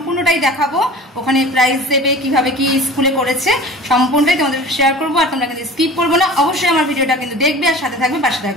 দেখাবো, ওখানে প্রাইজ দেবে, কিভাবে কি স্কুলে করেছে, সম্পূর্ণটাই তোমাদের শেয়ার করবো। আর তোমরা কিন্তু স্কিপ করবো না, অবশ্যই আমার ভিডিওটা কিন্তু দেখবে আর সাথে থাকবে, পাশে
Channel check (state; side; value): normal; both; correlation 0.40